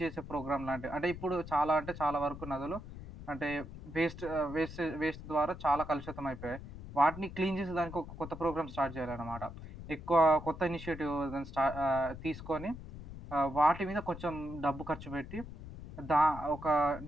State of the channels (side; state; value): left; noise; rumble, 12 dB below the sound